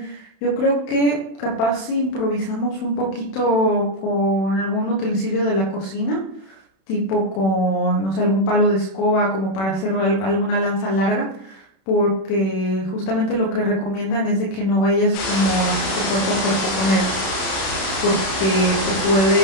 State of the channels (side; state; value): right; late; 31 ms